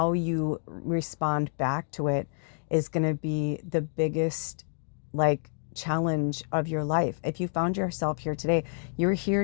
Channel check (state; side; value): silent; right; digital silence